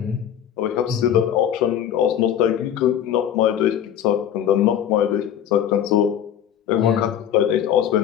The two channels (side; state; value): right; quieter; 9.8 dB